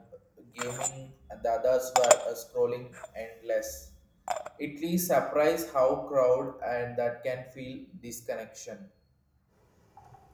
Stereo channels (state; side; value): identical; both; correlation 1.00